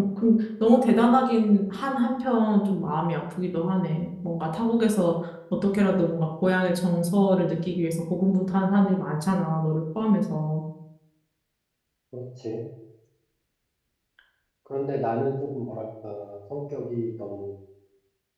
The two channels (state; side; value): identical; both; correlation 1.00